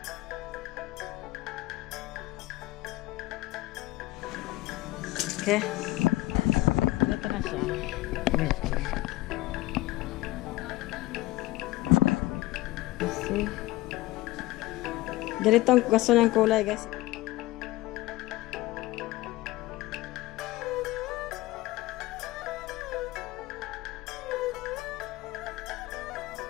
Okay. Ito na siya. Kasi ganito ang gusto ng kulay guys.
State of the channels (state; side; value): quieter; right; 18.6 dB